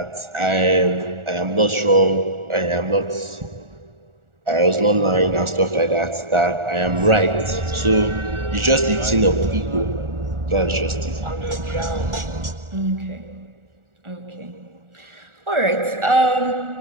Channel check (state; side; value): late; left; 1.4 ms